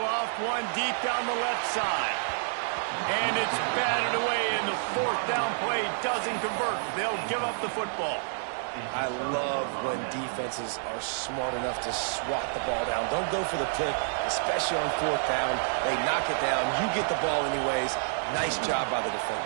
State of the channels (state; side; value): silent; left; digital silence